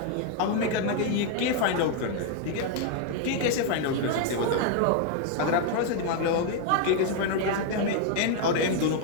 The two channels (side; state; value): both; different; correlation 0.00